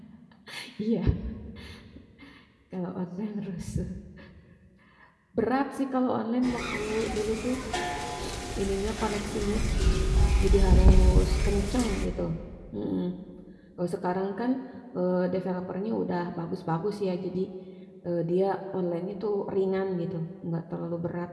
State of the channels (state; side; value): identical; both; correlation 1.00